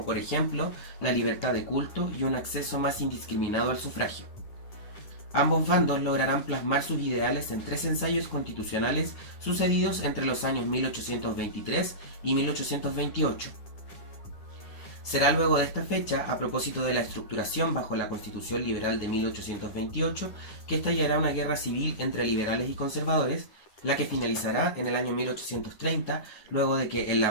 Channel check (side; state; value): right; late; 10 ms